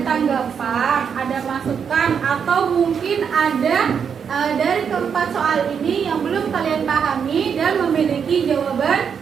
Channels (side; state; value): left; quieter; 7.0 dB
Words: tanggapan, ada masukan, atau mungkin ada dari keempat soal ini yang belum kalian pahami dan memiliki jawaban